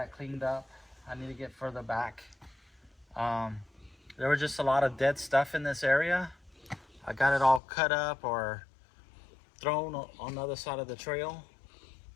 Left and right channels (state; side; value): drops out; right; at 7.6 s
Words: cleaned up. I need to get further back. There was just a lot of dead stuff in this area. I got it all cut up or thrown on the other side of the trail